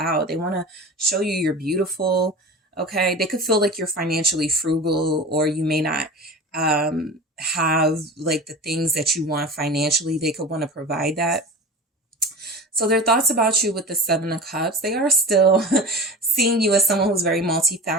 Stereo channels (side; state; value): both; normal; correlation 0.33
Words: They want to show you you're beautiful. Okay. They could feel like you're financially frugal, or you may not have like the things that you want financially. They could want to provide that. So their thoughts about you with the Seven of Cups, they are still seeing you as someone who's very